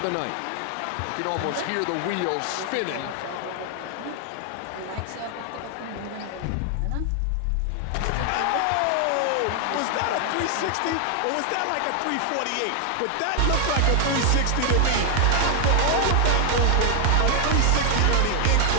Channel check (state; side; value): different; both; correlation 0.00